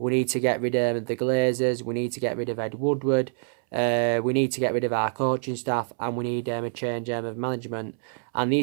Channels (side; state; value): left; silent; 61 dB below the other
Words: need to get rid of the Glazers. We need to get rid of Ed Woodward. We need to get rid of our coaching staff, and we need a change of management. And